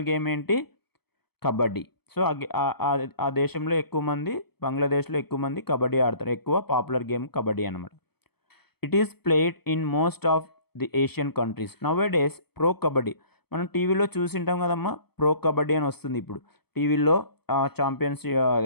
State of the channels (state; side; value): late; right; 0.97 ms